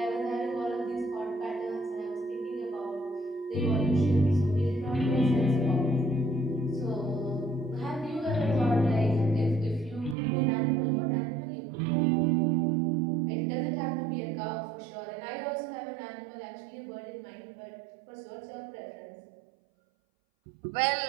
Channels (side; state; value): left; drops out; at 10.2 s